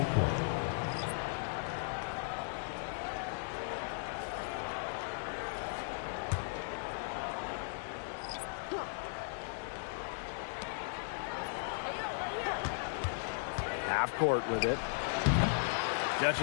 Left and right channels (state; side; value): silent; right; digital silence